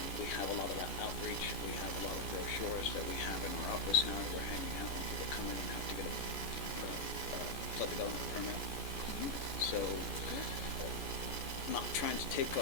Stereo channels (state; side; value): late; right; 14 ms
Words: We have a lot of that outreach. We have a lot of brochures that we have in our office now that we're handing out when people come in and have to get a flood development permit. So, not trying to take